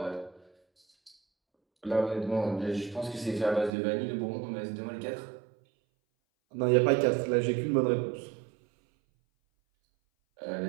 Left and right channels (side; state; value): left; drops out; at 3.7 s